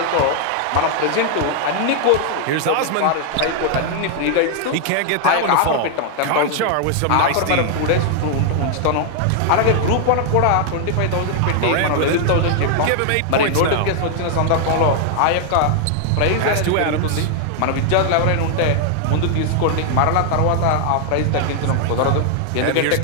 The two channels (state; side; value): different; both; correlation 0.00